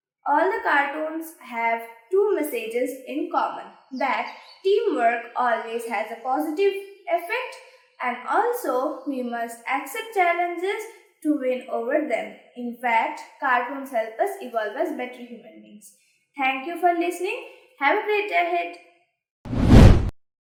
all the cartoons have two messages in common, that teamwork always has a positive effect, and also we must accept challenges to win over them. In fact, cartoons help us evolve as better human beings. Thank you for listening. Have a great day ahead.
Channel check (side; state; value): both; identical; correlation 1.00